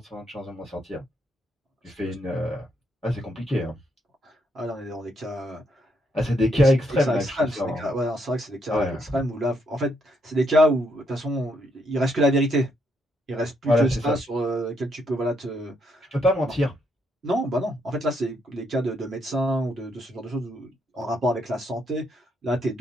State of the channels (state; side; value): normal; both; correlation 0.75